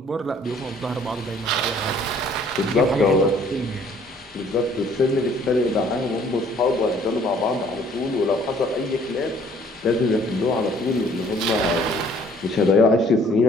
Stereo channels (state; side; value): normal; both; correlation 0.58